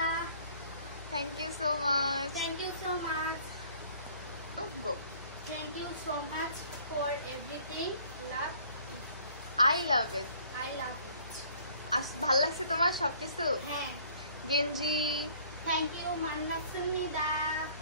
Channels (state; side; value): inverted; both; correlation -0.56